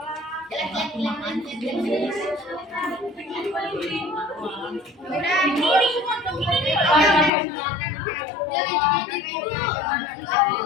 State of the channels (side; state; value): right; drops out; at 7.3 s